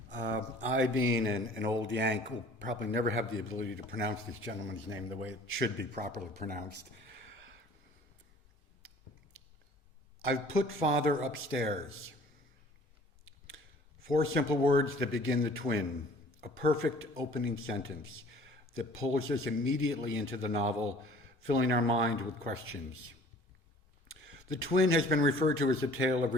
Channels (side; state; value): both; normal; correlation 0.51